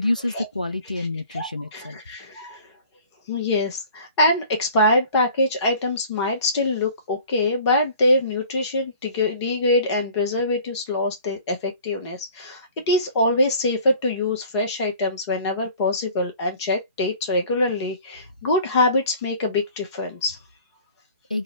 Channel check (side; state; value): both; inverted; correlation -0.48